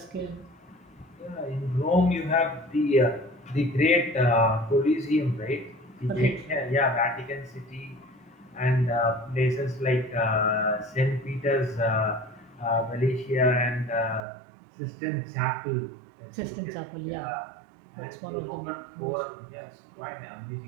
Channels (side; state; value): left; drops out; at 14.2 s